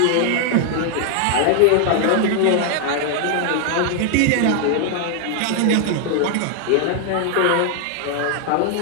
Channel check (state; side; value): different; both; correlation 0.00